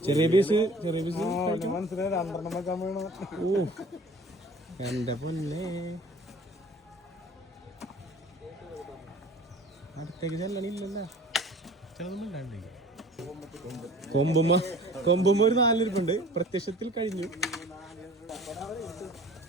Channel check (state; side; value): normal; both; correlation 0.46